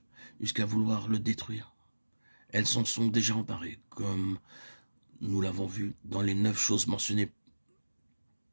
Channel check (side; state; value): both; inverted; correlation -1.00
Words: jusqu'à vouloir le détruire. Elles s'en sont déjà emparées, comme nous l'avons vu dans les 9 choses mentionnées